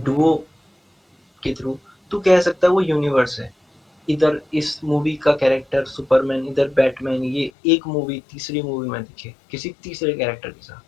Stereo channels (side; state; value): right; drops out; at 7.5 s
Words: हम्म। के थ्रू, तू कह सकता है वो यूनिवर्स है। इधर इस मूवी का कैरेक्टर सुपरमैन, इधर बैटमैन, ये एक मूवी तीसरी मूवी में दिखे किसी तीसरे कैरेक्टर के साथ,